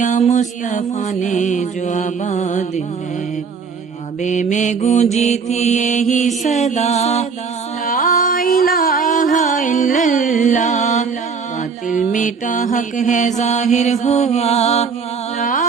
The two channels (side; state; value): left; quieter; 5.5 dB